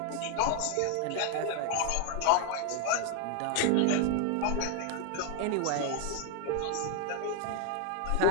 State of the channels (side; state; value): both; different; correlation 0.00